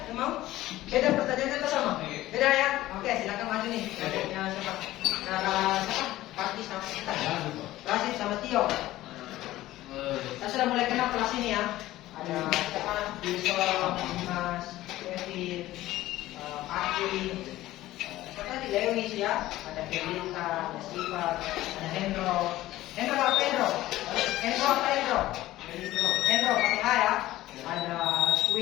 yang mau? Beda pertanyaannya atau sama? Beda ya? Oke, silakan maju nih. Kelompoknya siapa? Siapa? Parti sama kita. Rasid sama Tio. Saya sudah mulai kenal kelas ini ya. Ada siapa? Wilson, Dimas, Kevin, Aki, tadi Lewis ya. Ada Felita, ada Siva, ada Hendro. Hendro apa Hendro? Hendro apa Hendro? Hendro pakai H ya. Ada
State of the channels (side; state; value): right; quieter; 15.9 dB